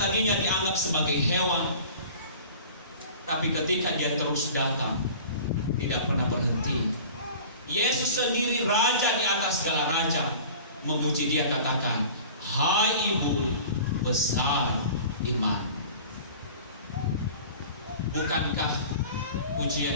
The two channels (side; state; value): both; inverted; correlation -0.42